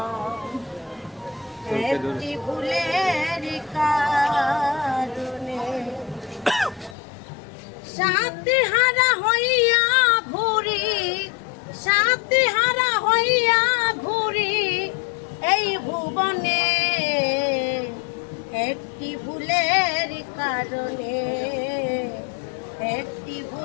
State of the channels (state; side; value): drops out; right; at 7.0 s